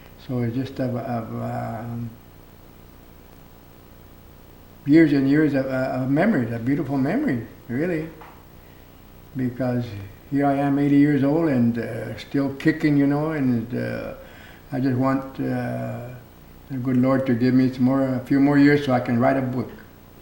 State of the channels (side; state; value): both; identical; correlation 1.00